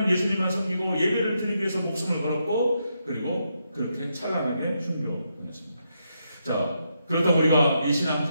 예수님만 섬기고 예배를 드리기 위해서 목숨을 걸었고 그리고 그렇게 찬란하게 순교했습니다. 자, 그렇다고 우리가 이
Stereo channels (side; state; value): both; inverted; correlation -0.81